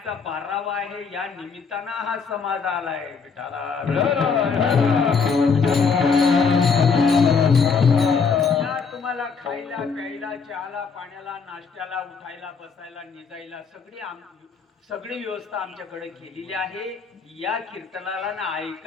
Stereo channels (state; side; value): quieter; right; 5.4 dB